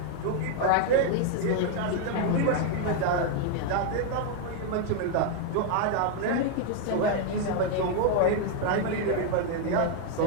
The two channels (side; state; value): both; different; correlation 0.00